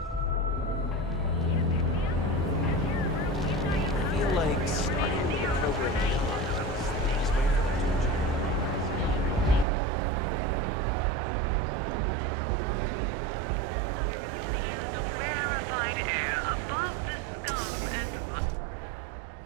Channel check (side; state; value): left; drops out; at 9.7 s